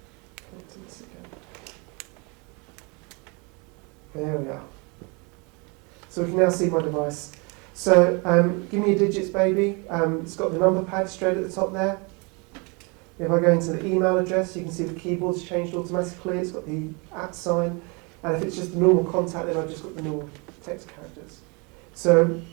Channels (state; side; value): quieter; left; 30.8 dB